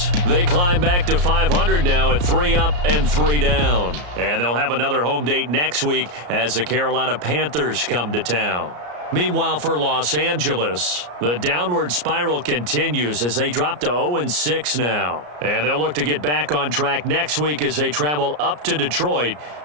they climb back to 500 now at 3 up and 3 down. And they'll have another home date next week as the Carolina Panthers come to town. Meanwhile, for Los Angeles, the downward spiral continues as they drop to 0-6 now. And they'll look to get back on track next week as they travel up to Detroit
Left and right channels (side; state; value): left; late; 34 ms